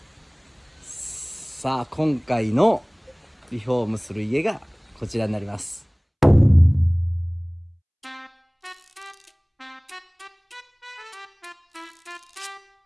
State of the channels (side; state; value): both; identical; correlation 1.00